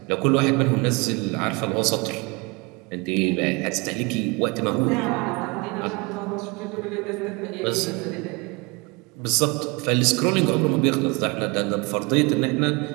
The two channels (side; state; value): left; quieter; 27.9 dB